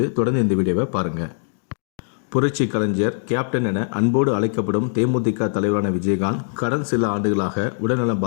தொடர்ந்து இந்த வீடியோவை பாருங்கள். புரட்சி கலைஞர் கேப்டன் என அன்போடு அழைக்கப்படும் தேமுதிக தலைவரான விஜயகாந்த் கடந்த சில ஆண்டுகளாக உடல்நலம்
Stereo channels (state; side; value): silent; right; digital silence